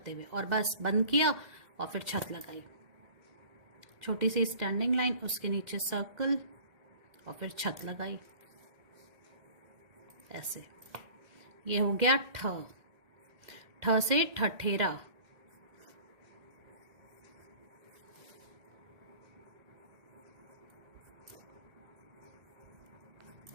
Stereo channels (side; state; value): left; late; 2.1 ms